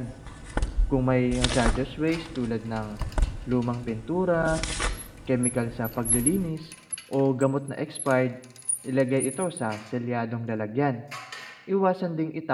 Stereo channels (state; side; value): identical; both; correlation 1.00